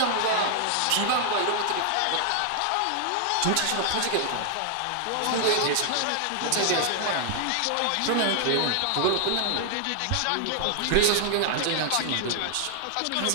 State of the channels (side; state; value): both; different; correlation 0.00